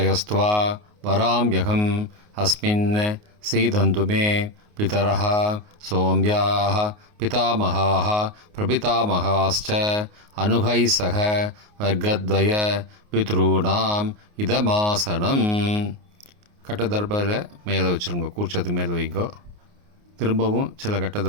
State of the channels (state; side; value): late; left; 29 ms